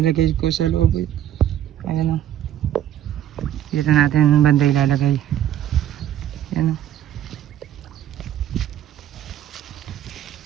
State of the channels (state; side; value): quieter; left; 11.5 dB